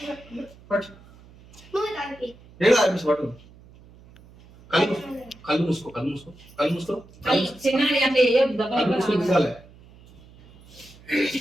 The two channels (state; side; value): noise; right; hum, 24 dB below the sound